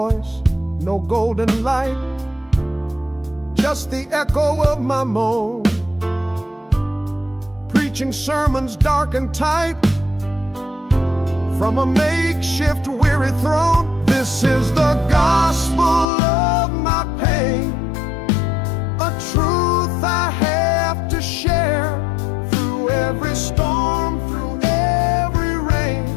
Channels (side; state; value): right; drops out; at 16.1 s